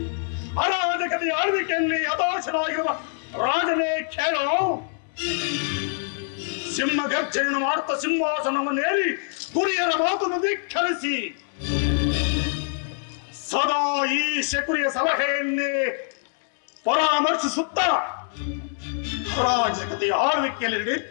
ಅರಾಜಕತೆಯ ಆಳ್ವಿಕೆಯಲ್ಲಿ ಹತಾಶನಾಗಿರುವ ರಾಜನೇ ಕೇಳೋ. ಸಿಂಹ ಗರ್ಜನೆಯನ್ನು ಮಾಡುತ್ತಾ ಸಿಂಹಾಸನವನ್ನೇರಿ ಗುರಿಯರ ಮಾತನ್ನು ಧಿಕ್ಕರಿಸಿ ಸದಾ ಈ ಶಕುನಿಯ ಸಲಹೆಯನ್ನೇ ಪರಾಮರ್ಶಿಸುತ್ತಾ ಅರಾಜಕತೆಯ ಆಳ್ವಿಕೆಯಲ್ಲಿ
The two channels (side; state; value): right; silent; 61 dB below the other